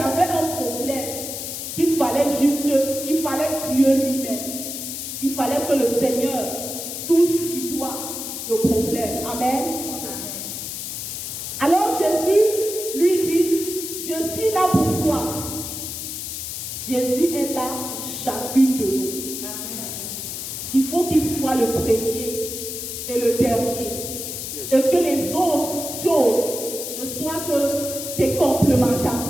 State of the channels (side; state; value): left; noise; hiss, 6 dB below the sound